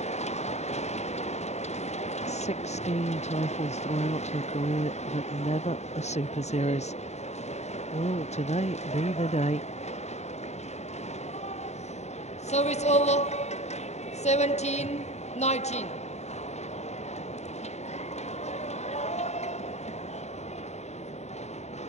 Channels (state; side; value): late; right; 0.32 ms